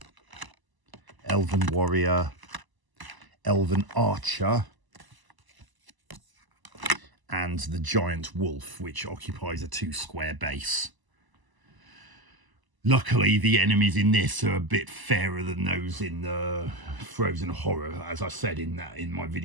elven warrior, elven archer, and the giant wolf, which occupies a 2-square base. Luckily, the enemies in this are a bit fairer than those in the Frozen Horror. As I said in my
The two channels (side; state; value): left; late; 1.0 ms